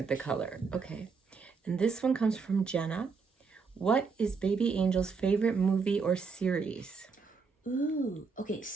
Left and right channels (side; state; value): left; quieter; 5.1 dB